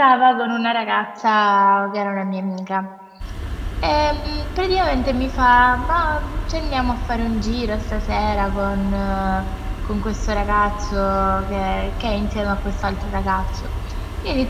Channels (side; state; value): both; identical; correlation 1.00